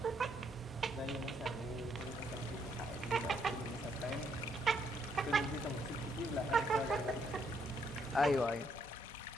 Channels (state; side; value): normal; both; correlation 0.72